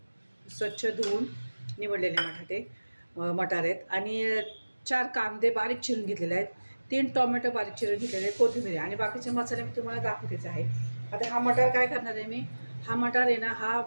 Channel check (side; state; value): both; inverted; correlation -1.00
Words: स्वच्छ धुवून निवडलेले मटार आहेत आणि 4 कांदे बारीक चिरून घेतलेले आहेत. 3 टोमॅटो बारीक चिरून घेतलेले आहेत, कोथिंबीर आणि बाकीचे मसाले मी तुम्हाला दाखवतेच आहे. आता हा मटार काय करणार आहे मी, हा मटार आहे ना, हा